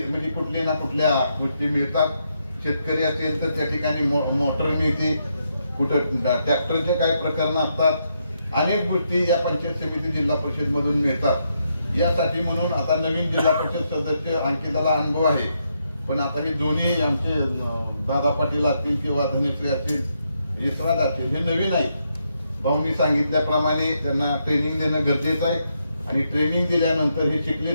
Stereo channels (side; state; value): both; inverted; correlation -0.79